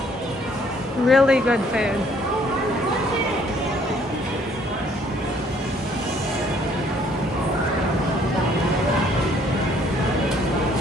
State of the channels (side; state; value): both; normal; correlation 0.62